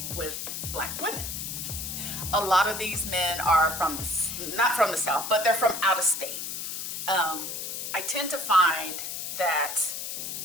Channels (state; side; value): noise; left; hiss, 5 dB below the sound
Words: with Black women. A lot of these men are not from the South, but they're from out of state. I tend to find that